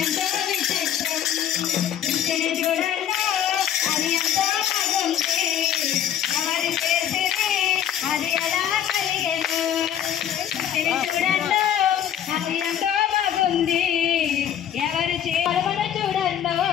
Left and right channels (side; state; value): right; quieter; 9.9 dB